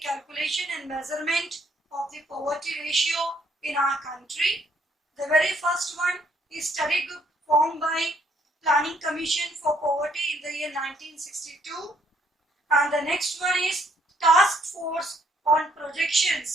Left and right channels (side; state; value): both; normal; correlation 0.67